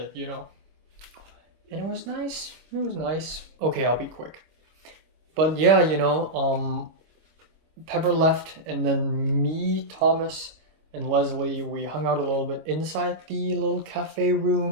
you know. And it was nice. It was nice. Okay, I'll be quick. But yeah, you know, Pepper left, and then me, Thomas, and Leslie, we hung out a little bit inside the little cafe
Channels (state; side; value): late; left; 25 ms